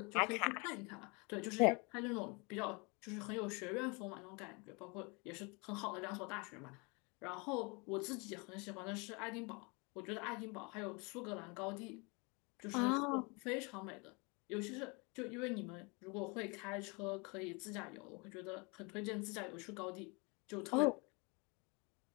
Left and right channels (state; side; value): quieter; right; 30.1 dB